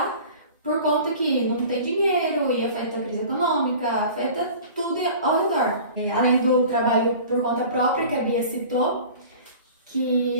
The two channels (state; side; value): inverted; both; correlation -0.42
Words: por conta que não tem dinheiro e afeta a crise econômica, afeta tudo ao redor. Além do trabalho por conta própria que a Bia citou,